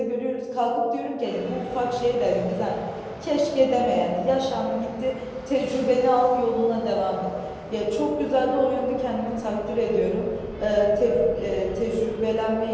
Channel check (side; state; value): both; identical; correlation 1.00